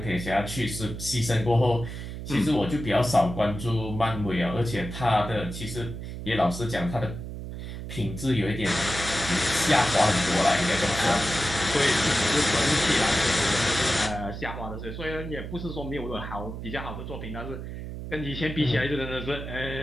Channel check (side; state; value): right; noise; hum, 8 dB below the sound